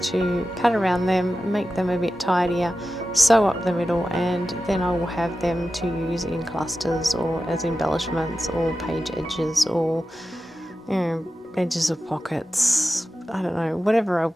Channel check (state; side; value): normal; both; correlation 0.93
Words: to cut around them, make them a bit tidier, sew up the middle, and then I will have them to use in clusters or as embellishments or page edges or, you know, edges of pockets. I don't know, whatever I